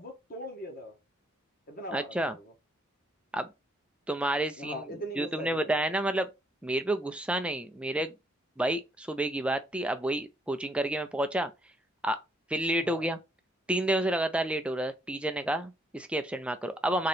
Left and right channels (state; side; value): normal; both; correlation 0.71